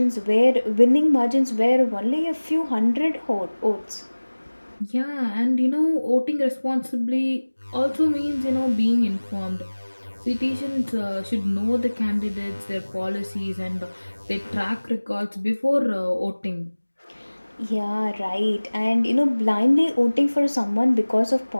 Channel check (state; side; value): inverted; both; correlation -1.00